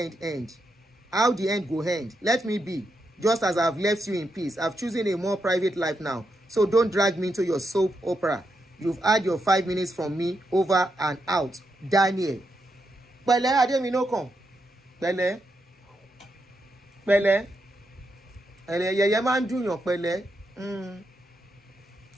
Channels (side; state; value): both; normal; correlation 0.83